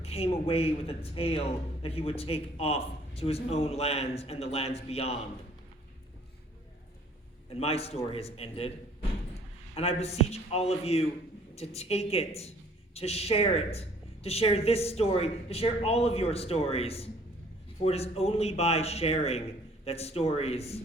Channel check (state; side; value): normal; both; correlation 0.57